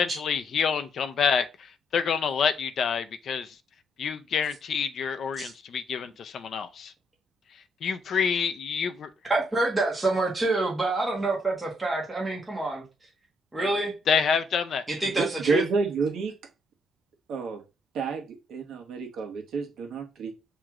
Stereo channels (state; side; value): normal; both; correlation 0.73